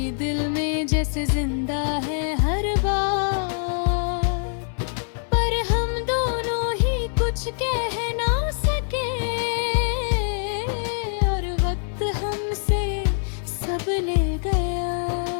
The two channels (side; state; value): right; silent; 60 dB below the other